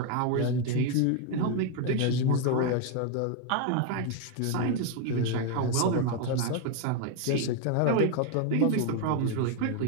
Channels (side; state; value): both; different; correlation 0.01